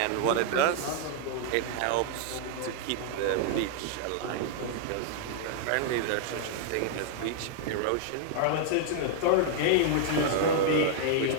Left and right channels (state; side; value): different; both; correlation -0.01